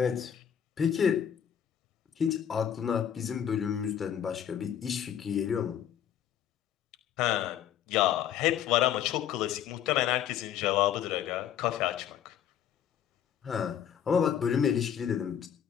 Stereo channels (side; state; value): right; quieter; 9.5 dB